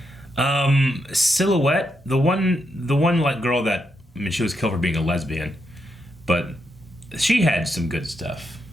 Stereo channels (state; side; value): normal; both; correlation 0.82